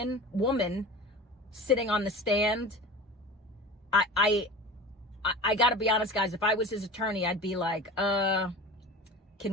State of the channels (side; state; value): both; normal; correlation 0.35